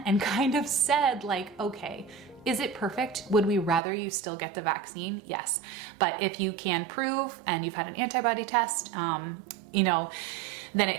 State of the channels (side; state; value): left; drops out; at 3.8 s